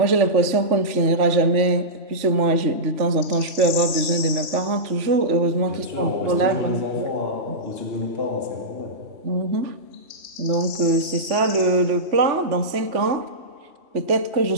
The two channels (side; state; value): left; late; 3.4 ms